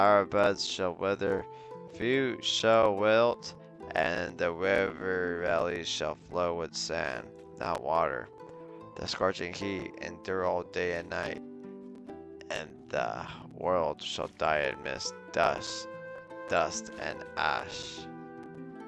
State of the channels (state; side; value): identical; both; correlation 1.00